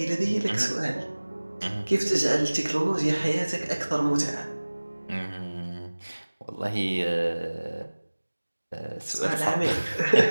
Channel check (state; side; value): inverted; both; correlation -1.00